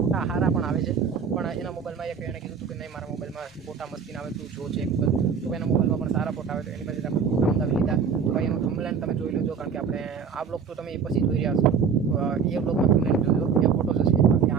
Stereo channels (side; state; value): left; quieter; 6.3 dB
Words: સારા પણ આવે છે, પણ એના મોબાઈલમાં એક એણે કીધું હતું કે નહીં મારા મોબાઈલમાં ફોટા મસ્તીને આવે, તું જો ચેક કર। તો એના મોબાઈલમાં પણ સારા ફોટા આવે, તો એની પાસે આપણે ફોટા મંગાવી લીધા। તો ભાઈ એનું થંબનેલ તમે જોઈ લેજો, કારણ કે આપણે આ બ્લોગ તો તમે એ પછી જોઈ રહ્યા છો, એ બ્લોગમાં થંબનેલ જોજો, એ ફોટો હશે, બાકી